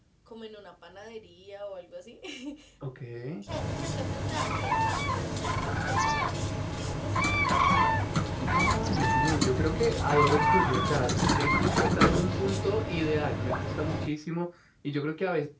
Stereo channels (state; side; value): identical; both; correlation 1.00